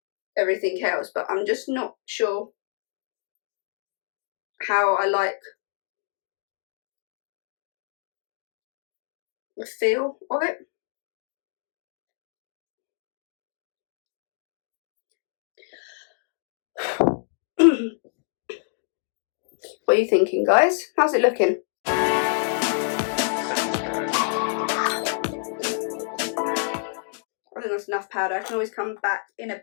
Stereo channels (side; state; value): right; silent; 60 dB below the other